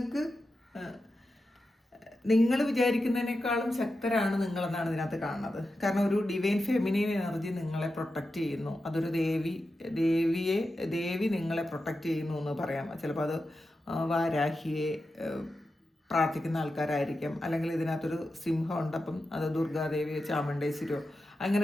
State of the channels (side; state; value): both; normal; correlation 0.90